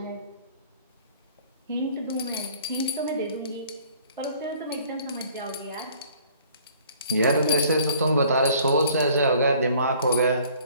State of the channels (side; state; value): both; inverted; correlation -0.55